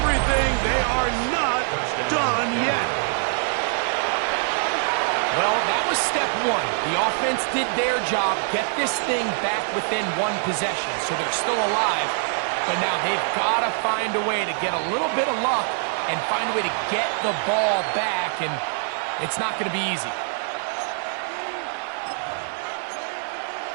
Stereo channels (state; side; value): silent; left; 63 dB below the other